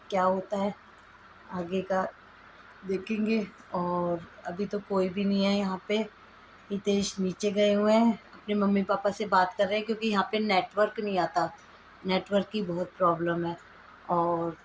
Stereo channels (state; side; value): identical; both; correlation 1.00